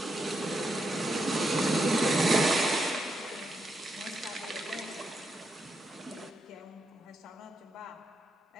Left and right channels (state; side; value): normal; both; correlation 0.82